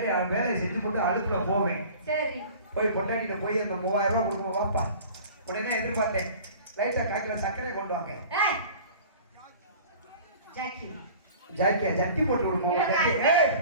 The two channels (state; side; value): inverted; both; correlation -0.44